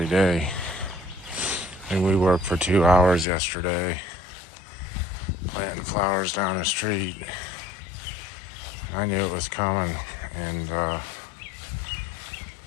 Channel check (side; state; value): right; drops out; at 3.2 s